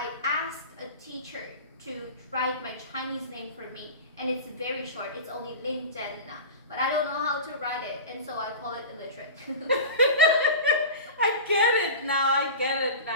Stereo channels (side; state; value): both; inverted; correlation -0.31